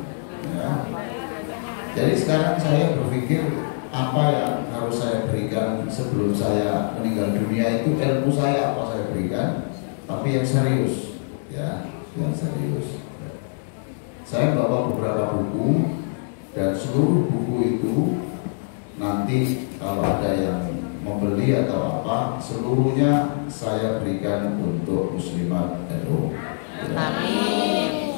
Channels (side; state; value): right; silent; 63 dB below the other